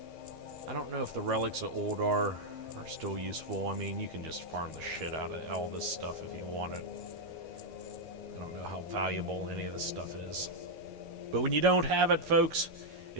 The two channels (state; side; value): late; left; 13 ms